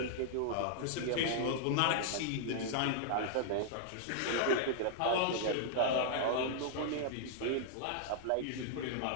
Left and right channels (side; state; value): both; different; correlation -0.01